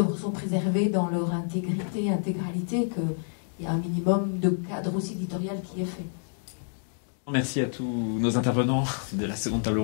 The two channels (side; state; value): right; silent; digital silence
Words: sont préservées dans leur intégralité, qu'il y a un minimum de cadre aussi éditorial qui est fait. Merci à tous nos intervenants de la seconde table